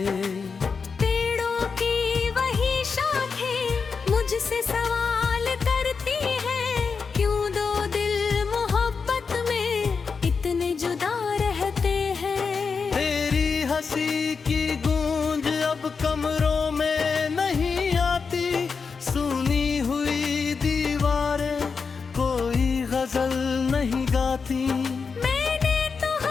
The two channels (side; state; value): right; quieter; 5.3 dB